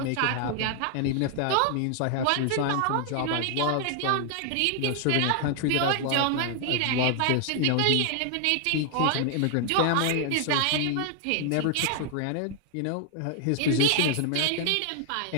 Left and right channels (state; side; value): different; both; correlation 0.00